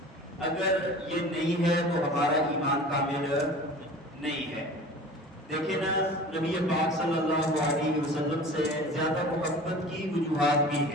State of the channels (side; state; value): both; normal; correlation 0.40